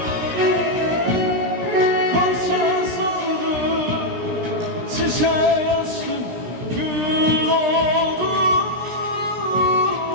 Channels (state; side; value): late; left; 17 ms